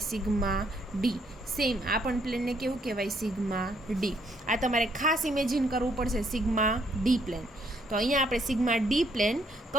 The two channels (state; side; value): normal; both; correlation 0.70